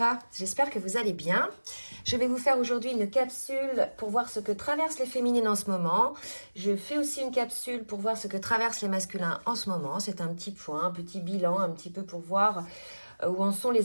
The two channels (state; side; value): inverted; both; correlation -1.00